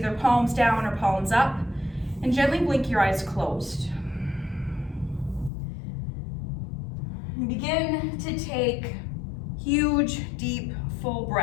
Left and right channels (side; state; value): right; drops out; at 5.5 s